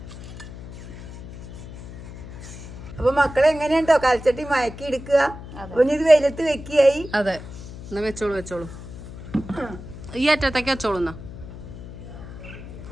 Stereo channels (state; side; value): noise; left; hum, 13 dB below the sound